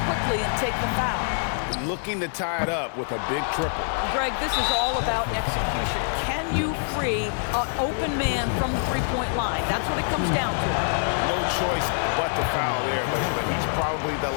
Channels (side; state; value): right; silent; 62 dB below the other